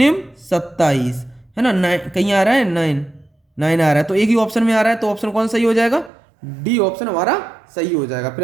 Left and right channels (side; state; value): left; drops out; at 6.1 s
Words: 27 है ना। 9 कहीं आ रहा है, 9 आ रहा है, तो एक ही ऑप्शन में आ रहा है, तो ऑप्शन कौन सही हो जाएगा, डी ऑप्शन हमारा सही हो जाएगा। फिर